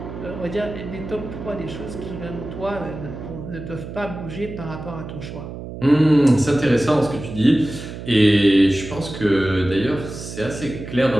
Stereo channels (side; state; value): right; noise; hum, 10 dB below the sound